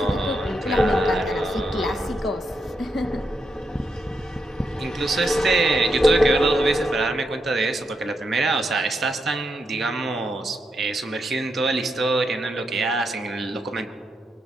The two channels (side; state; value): both; normal; correlation 0.83